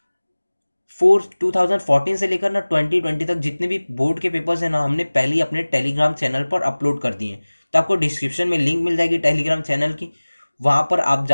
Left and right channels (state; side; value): inverted; both; correlation -1.00